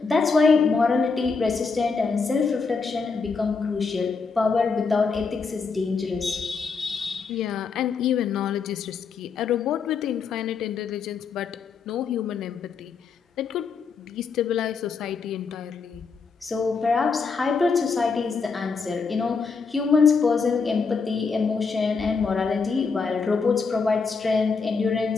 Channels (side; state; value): right; quieter; 5.0 dB